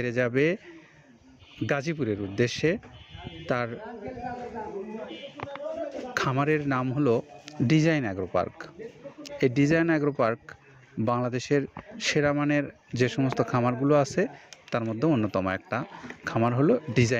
যাবে গাজীপুরের উদ্দেশ্যে, তার খামারের নাম হলো ডিজাইন অ্যাগ্রো পার্ক। এই ডিজাইন অ্যাগ্রো পার্ক বাংলাদেশের সেরা মানের যে সমস্ত খামারগুলো আছে তার মধ্যে অন্যতম একটা খামার হলো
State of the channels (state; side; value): identical; both; correlation 1.00